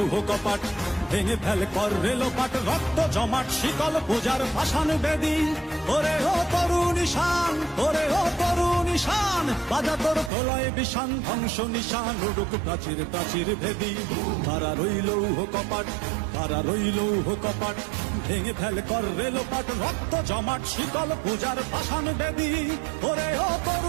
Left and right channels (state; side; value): drops out; left; at 10.3 s